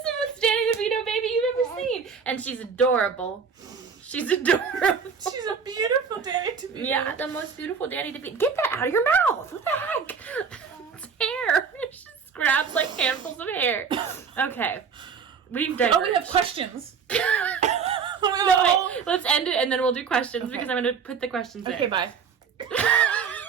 the most Danny DeVito baby you've ever seen. And she's adorable. She's adorable. She's a beautiful Danny DeVito. Yeah, the most beautiful Danny DeVito. Get that out of your mouth. What the heck? It's hair. She just grabs like handfuls of hair. Okay. We've diverged. Oh, we have questions. No, wait. Let's end it and then we'll do questions because I'm going to put the questions in. Okay, bye.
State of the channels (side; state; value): left; quieter; 6.2 dB